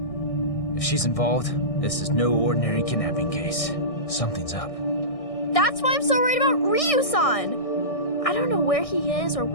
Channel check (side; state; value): right; late; 1.6 ms